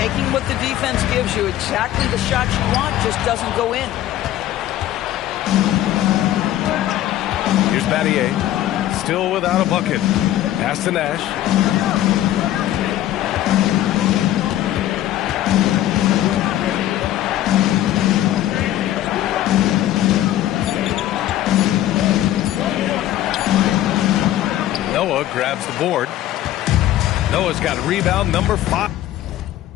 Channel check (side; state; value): right; quieter; 13.3 dB